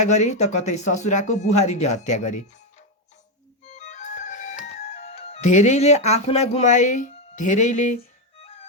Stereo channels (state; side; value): normal; both; correlation 0.07